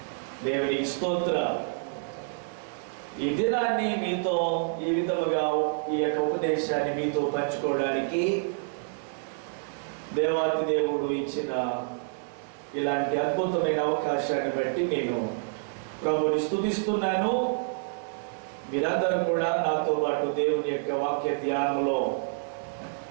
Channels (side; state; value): left; silent; 59 dB below the other